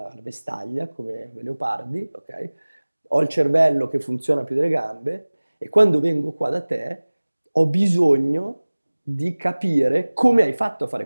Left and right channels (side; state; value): both; inverted; correlation -1.00